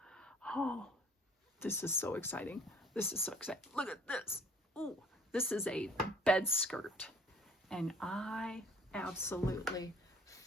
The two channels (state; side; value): normal; both; correlation 0.55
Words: Oh, this is so exciting. This is so exciting. Look at this. Ooh, this is a bed skirt. And I absolutely